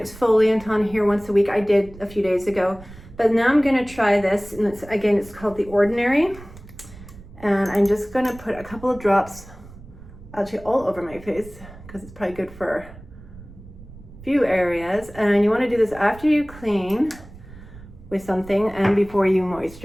on here once a week. I did a few days ago, but now I'm gonna try this. And it's called The Ordinary. And I'm just gonna put a couple of drops actually all over my face because it's probably good for a few areas. And you wanna do this after you clean with something and before you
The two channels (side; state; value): right; noise; rumble, 18 dB below the sound